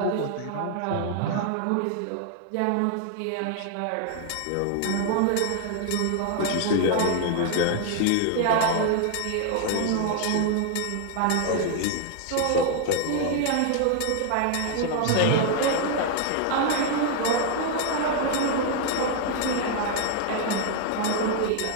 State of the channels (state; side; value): different; both; correlation 0.00